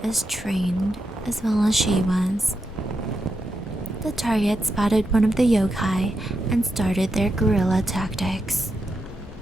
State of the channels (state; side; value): normal; both; correlation 0.85